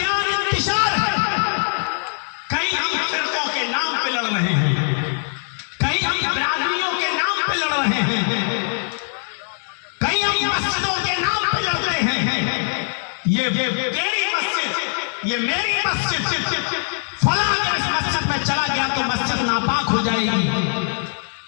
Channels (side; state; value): right; silent; digital silence